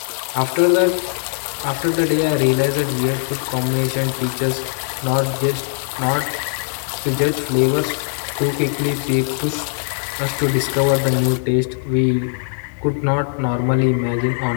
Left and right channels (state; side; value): silent; right; digital silence